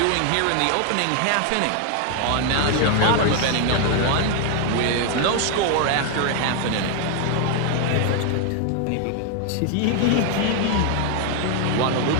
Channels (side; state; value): both; different; correlation 0.00